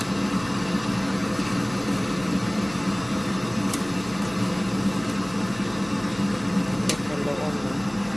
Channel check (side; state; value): left; noise; hum, 20 dB below the sound